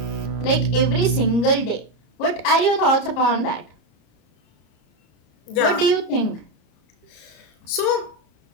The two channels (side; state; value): right; late; 34 ms